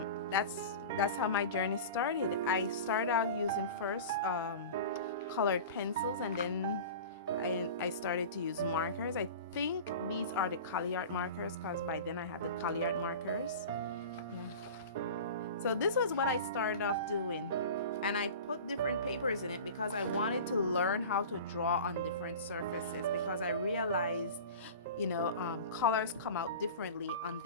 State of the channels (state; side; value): inverted; both; correlation -0.35